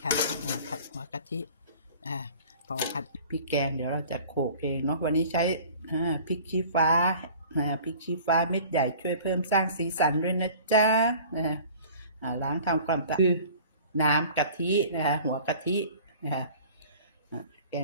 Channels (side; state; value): both; inverted; correlation -0.46